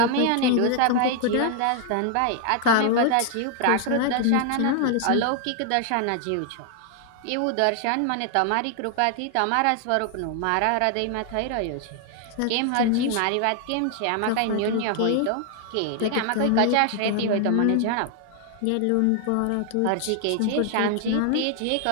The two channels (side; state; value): both; different; correlation 0.00